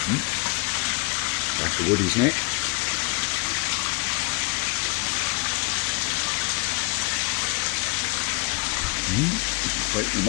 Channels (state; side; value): quieter; right; 27.3 dB